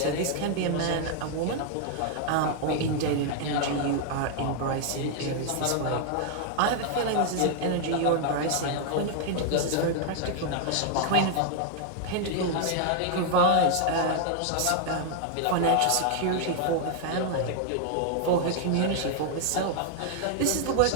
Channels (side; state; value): both; different; correlation 0.00